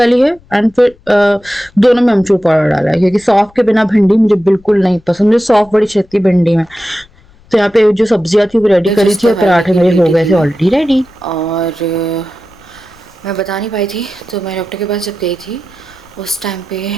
है एंड फिर दोनों में अमचूर पाउडर डाला है क्योंकि सौंफ के बिना भिंडी मुझे बिल्कुल नहीं पसंद। मुझे सौंफ बड़ी छेती भिंडी में। तो यहाँ पे जो सब्जियां थी वो रेडी करी जिस थी और दवाई पराठे की मेरे हो लेटी गए थे थी ऑलरेडी रेडी। और मैं बता नहीं पाई थी, तो मैं डॉक्टर के पास जब गई थी उस टाइम पे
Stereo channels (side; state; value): left; noise; rumble, 29 dB below the sound